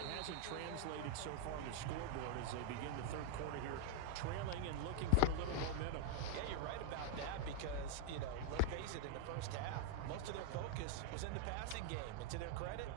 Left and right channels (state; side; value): different; both; correlation -0.01